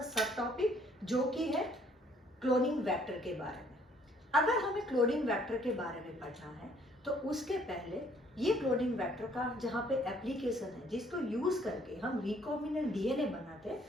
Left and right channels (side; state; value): both; normal; correlation 0.63